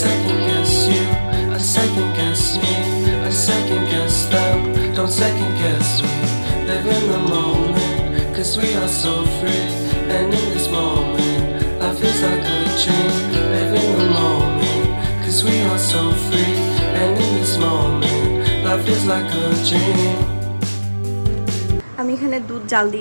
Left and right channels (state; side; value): inverted; both; correlation -1.00